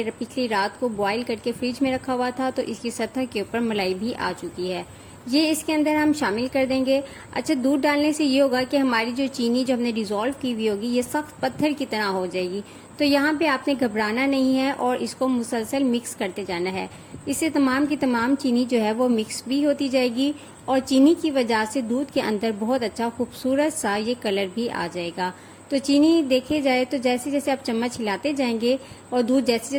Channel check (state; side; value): identical; both; correlation 1.00